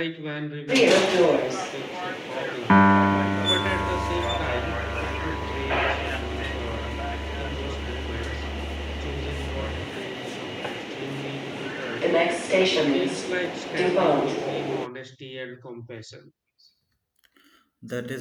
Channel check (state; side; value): identical; both; correlation 1.00